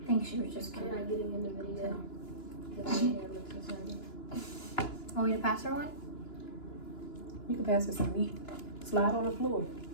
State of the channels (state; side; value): late; right; 2.9 ms